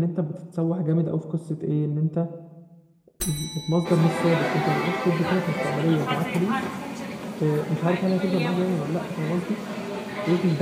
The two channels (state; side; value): identical; both; correlation 1.00